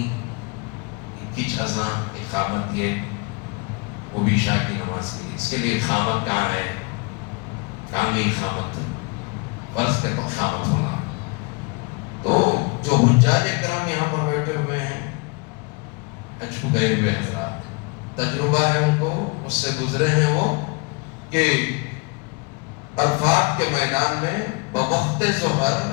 کچھ اذان اقامت، یہ وہ بھی عشاء کی نماز کے لیے، اس کے لیے اقامت کہاں ہے؟ کہاں گئی اقامت؟ فرض کے تو اقامت ہونا۔ تو جو حجاج کرام یہاں پر بیٹھے ہوئے ہیں، حج کو گئے ہوئے حضرات، تجربہ ہے ان کو، اس سے گزرے ہیں وہ، کہ عرفات کے میدان میں بوقت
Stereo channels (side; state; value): right; quieter; 28.8 dB